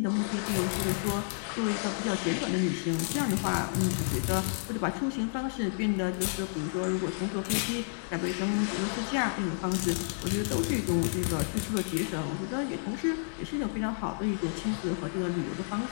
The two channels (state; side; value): silent; right; digital silence